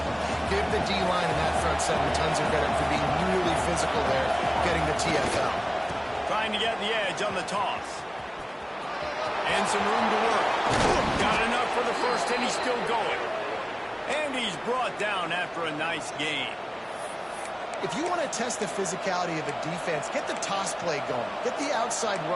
him. Give the D-line and that front seven tons of credit for being really physical there, getting the TFL. Trying to get the edge on the toss. And some room to work. Got enough for the first, and he's still going. And he's brought down after a nice game. If you want to test the physicality of a defense, get the toss play going. Get the outside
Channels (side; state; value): both; identical; correlation 1.00